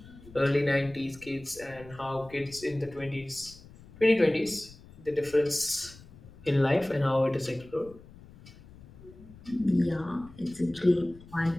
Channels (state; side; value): noise; left; rumble, 20 dB below the sound